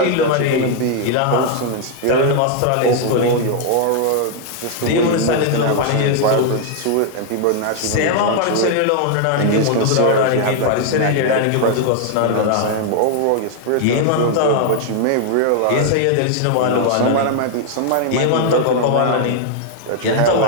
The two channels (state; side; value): different; both; correlation 0.00